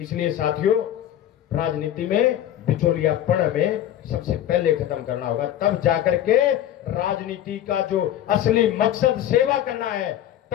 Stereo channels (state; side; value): quieter; right; 11.6 dB